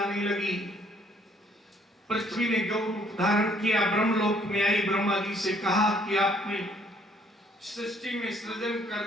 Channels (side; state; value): both; normal; correlation 0.63